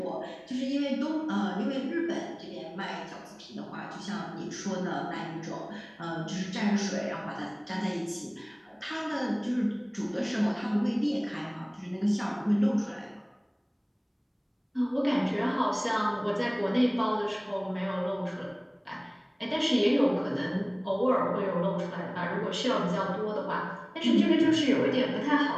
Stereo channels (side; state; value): both; identical; correlation 1.00